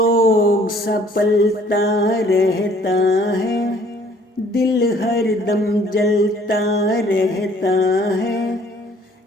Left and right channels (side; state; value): both; normal; correlation 0.58